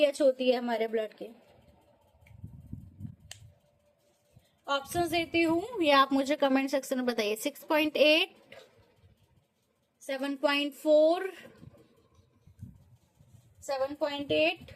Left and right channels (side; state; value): both; identical; correlation 1.00